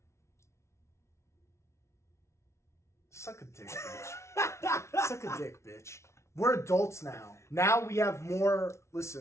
Suck a dick, bitch. Suck a dick, bitch. We're adults now. Now we have more.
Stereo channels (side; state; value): right; late; 0.13 ms